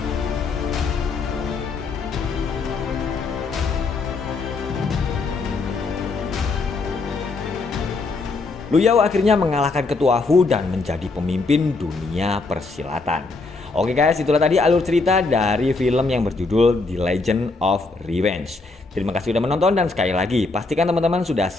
Lu Yao akhirnya mengalahkan ketua Fu dan menjadi pemimpin dunia persilatan. Oke guys, itulah tadi alur cerita dari film yang berjudul The Legend of Revenge. Terima kasih sudah menonton dan sekali lagi pastikan teman-teman sudah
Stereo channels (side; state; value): right; quieter; 3.8 dB